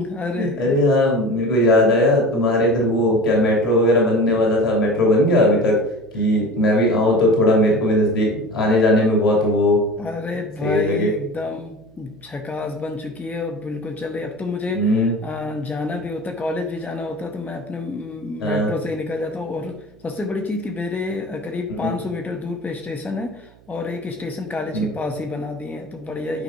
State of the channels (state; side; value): noise; right; hum, 28 dB below the sound